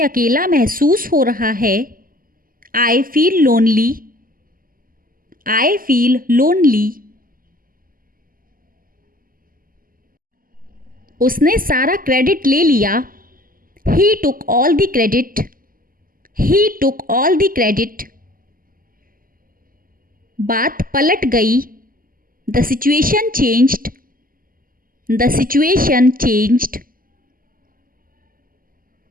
अकेला महसूस हो रहा है. I feel lonely. I feel lonely. उसने सारा क्रेडिट ले लिया। He took all the credit. He took all the credit. बात पलट गई। The situation changed. The situation changed.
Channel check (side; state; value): left; late; 0.41 ms